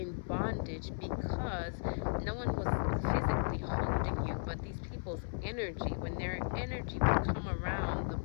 bondage because no one was physically holding you, but these people's energy, when their energy would come around, the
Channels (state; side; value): silent; right; 54 dB below the other